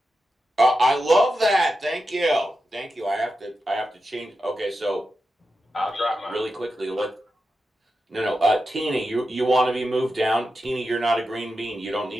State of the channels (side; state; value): both; normal; correlation 0.90